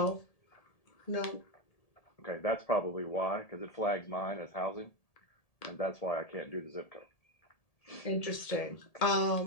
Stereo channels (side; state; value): right; late; 1.7 ms